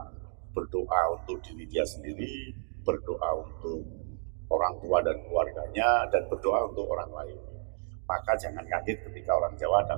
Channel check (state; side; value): silent; left; 57 dB below the other